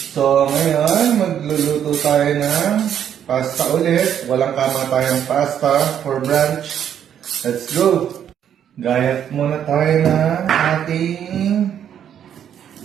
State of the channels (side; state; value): left; quieter; 9.3 dB